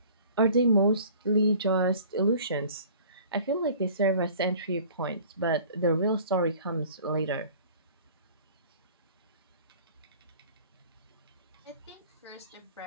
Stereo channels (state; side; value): inverted; both; correlation -0.48